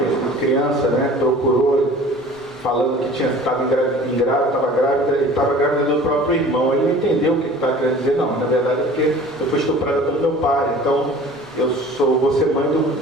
uma criança, né, procurou falando que estava grávida e estava grávida do próprio irmão. Ele não entendeu o que estava querendo dizer. Não, na verdade é porque eu fui estuprada pelo meu pai, então vou ser mãe do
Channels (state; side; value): normal; both; correlation 0.45